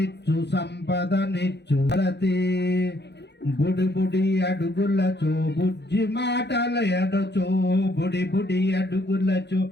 సంపద నిచ్చు రతి బుడి బుడి అడుగులచో బుజ్జి మాటలయడుచో బుడి బుడి అడుగులచో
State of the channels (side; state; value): right; late; 0.50 ms